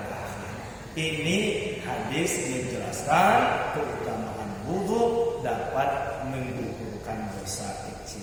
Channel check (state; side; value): identical; both; correlation 1.00